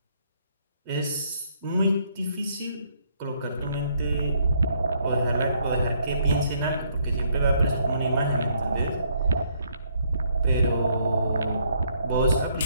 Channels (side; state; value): both; inverted; correlation -0.69